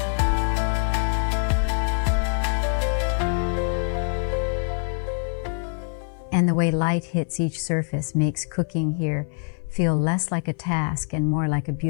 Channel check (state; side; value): silent; right; 57 dB below the other